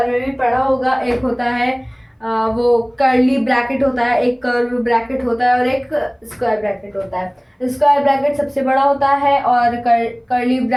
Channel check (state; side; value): identical; both; correlation 1.00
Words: में भी पढ़ा होगा, एक होता है वो कर्ली ब्रैकेट होता है, एक कर्व ब्रैकेट होता है, और एक स्क्वायर ब्रैकेट होता है। स्क्वायर ब्रैकेट सबसे बड़ा होता है और कर्ली